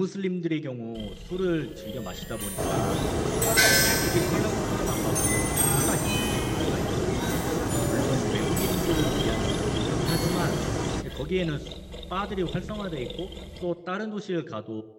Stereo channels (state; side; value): identical; both; correlation 1.00